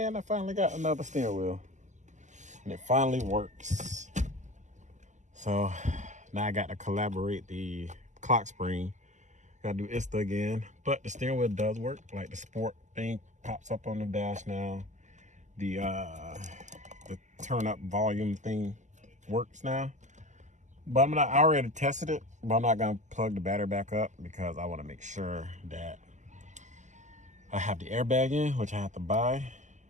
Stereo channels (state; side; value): late; left; 0.34 ms